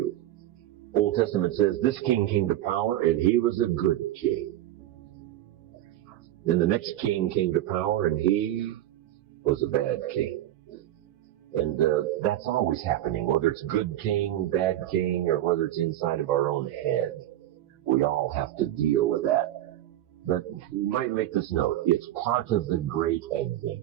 Old Testament says this king came to power and he was a good king. Then the next king came to power and he was a bad king. And that's always happening, whether it's good king, bad king, or whether it's inside of our own head. We all have to deal with that. But you might make this note, it's part of the great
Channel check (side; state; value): left; quieter; 13.4 dB